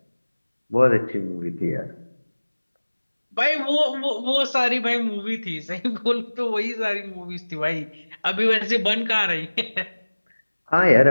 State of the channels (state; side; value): inverted; both; correlation -1.00